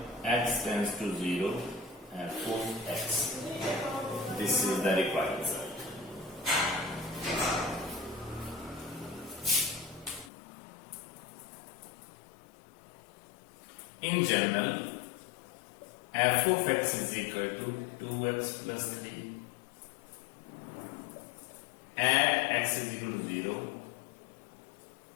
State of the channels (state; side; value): drops out; right; at 10.3 s